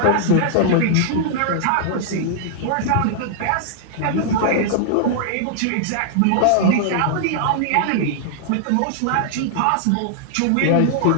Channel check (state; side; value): different; both; correlation -0.01